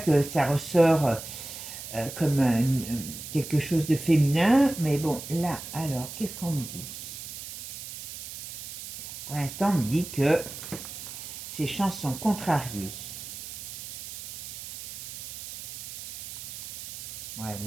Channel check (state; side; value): noise; right; hiss, 10 dB below the sound